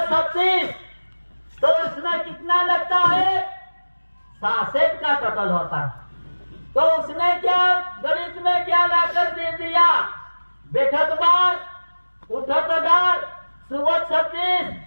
36, तो उसमें कितना लगता है? 66 का टोटल होता है। तो उसने क्या गणित में क्या लाकर दे दिया? बैठो तो बार, उठो तो डार, सुबह 36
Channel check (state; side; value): inverted; both; correlation -1.00